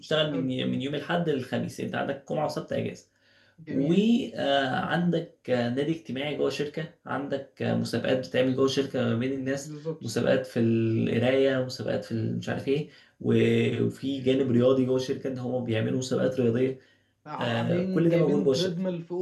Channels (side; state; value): both; identical; correlation 1.00